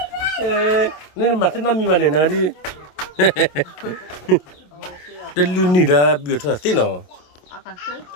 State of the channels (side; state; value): right; late; 27 ms